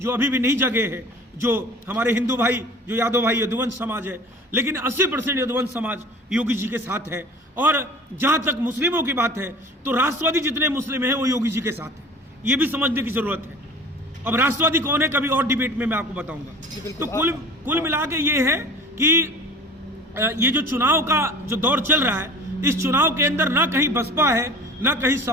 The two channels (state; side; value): normal; both; correlation 0.41